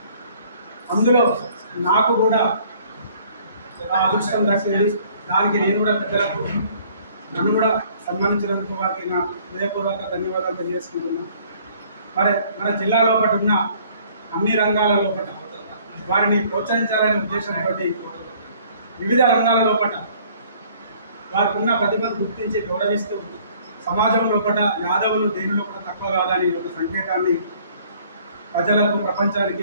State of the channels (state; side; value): inverted; both; correlation -0.58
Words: అందులో నాకు కూడా ఆ అదృష్టం దక్కింది. దానికి నేను కూడా పెద్దలకు నన్ను కూడా సన్మానించినందుకు వారికి నా హృదయపూర్వక ధన్యవాదాలు తెలియజేసుకుంటున్నాను. మరి మన జిల్లా లోపల ఉన్న అన్ని రంగాల లోపల వారిని ప్రోత్సహించాలనే ఉద్దేశంతో వివిధ రంగాల లోపల వారికి ఉన్న ప్రతిభను గుర్తించి గౌరవిస్తూ సమాజం లోపల యాదవులు దేని లోపల తక్కువ కాదని ఒక సంకేతాన్ని ప్రజలకు ప్రపంచానికి